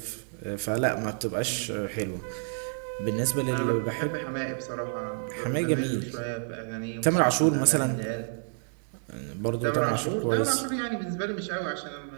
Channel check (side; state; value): left; silent; digital silence